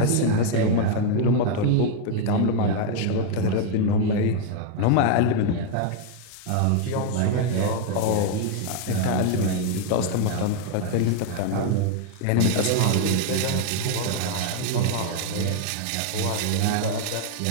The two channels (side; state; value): both; different; correlation 0.00